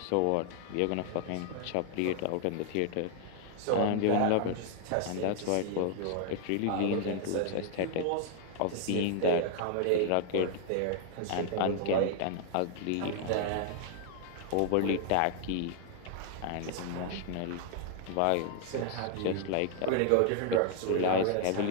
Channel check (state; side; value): different; both; correlation 0.00